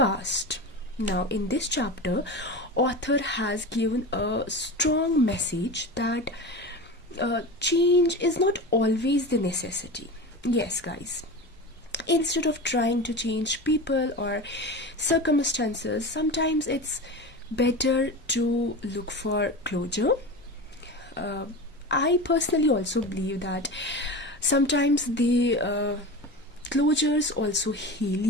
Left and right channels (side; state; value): both; normal; correlation 0.28